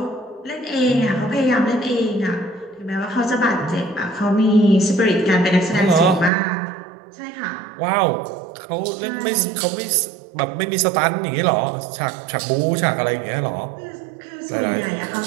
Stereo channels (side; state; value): left; drops out; at 6.3 s